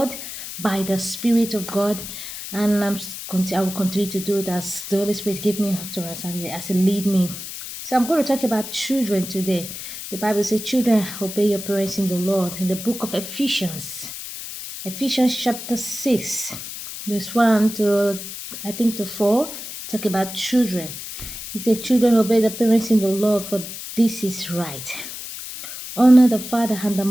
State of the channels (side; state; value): left; noise; hiss, 9 dB below the sound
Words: by the Spirit of God, and I will continue to do it as the Holy Spirit give me utterance as it lead me. So I'm going to talk about children today. The Bible says, "Children, obey your parents in the Lord." In the book of Ephesians chapter 6, verse 1 to I think to 4, talk about children. It says, "Children, obey the parents in the Lord, for this is right. Honor the father and the